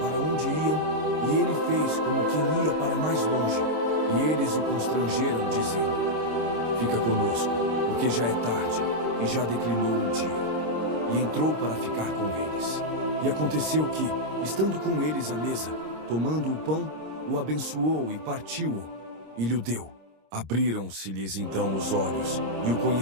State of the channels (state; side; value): late; left; 26 ms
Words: onde iam, e ele fez como quem ia para mais longe. E eles o constrangeram, dizendo: fica conosco, porque já é tarde, e já declinou o dia. E entrou para ficar com eles. E aconteceu que, estando com eles à mesa, tomando o pão, o abençoou e partiu-o, e lhe deu. Abriram-se-lhes então os olhos, e o